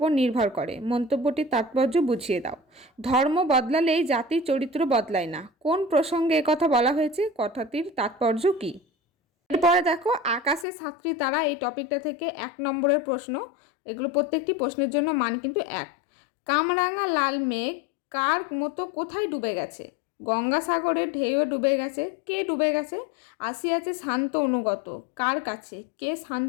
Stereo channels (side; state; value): right; drops out; at 10.7 s